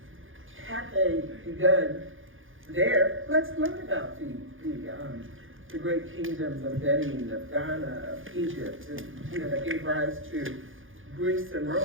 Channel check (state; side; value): late; left; 0.58 ms